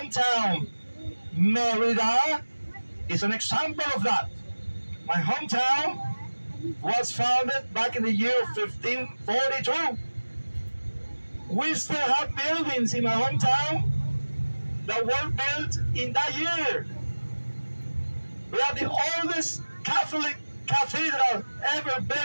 Mérida, is an example of that. My hometown was founded back in the year 1542. We still have buildings in my hometown that were built in that year. We are the oldest Catholic cathedral ever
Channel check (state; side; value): inverted; both; correlation -1.00